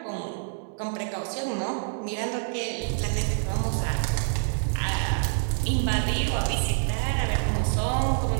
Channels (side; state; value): left; silent; digital silence